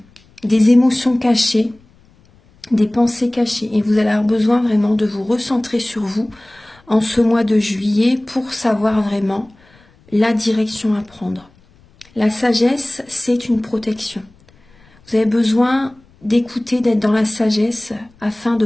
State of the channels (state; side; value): noise; left; rumble, 30 dB below the sound